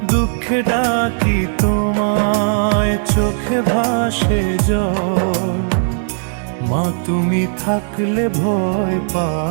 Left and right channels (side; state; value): left; silent; 68 dB below the other